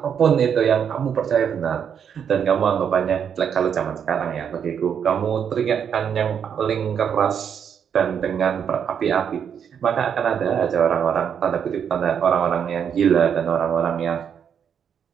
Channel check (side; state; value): left; quieter; 7.8 dB